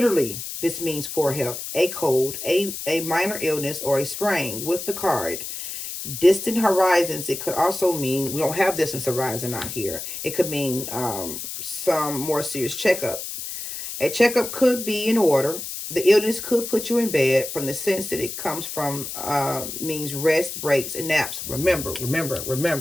this means poor health, a cold, a minor illness, or a sprain with the card. Distant horizons, it could also mean, we don't have distance horizon out here. It could mean some more serious checkup. A checkup could be in order. The illness could put you in bed. From the sense that it comes from, means rest, breaks, and naps. Remember.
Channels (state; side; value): noise; left; hiss, 7 dB below the sound